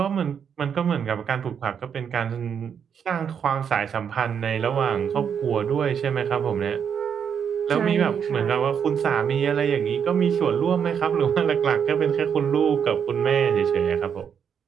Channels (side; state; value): left; quieter; 7.6 dB